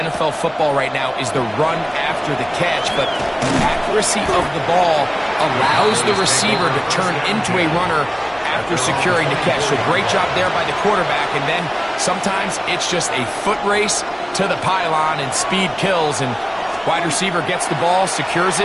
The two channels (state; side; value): identical; both; correlation 1.00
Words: football right now is the run after the catch. But the accuracy of the ball allows the receiver to turn into a runner after securing the catch. So great job there by the quarterback. And then sometimes it's just a foot race to the pylon and speed kills. And wide receiver gets the ball, secures